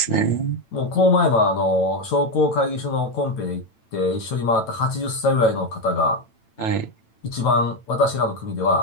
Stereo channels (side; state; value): right; late; 9.0 ms